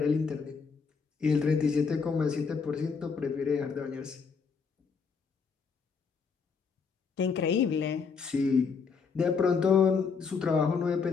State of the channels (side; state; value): right; quieter; 5.5 dB